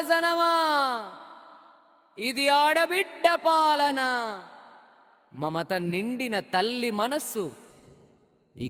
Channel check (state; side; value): identical; both; correlation 1.00